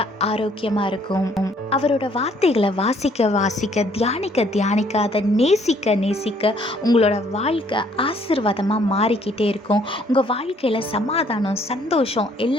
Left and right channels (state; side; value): normal; both; correlation 0.63